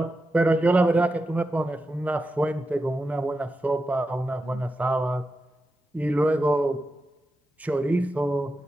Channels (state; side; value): normal; both; correlation 0.90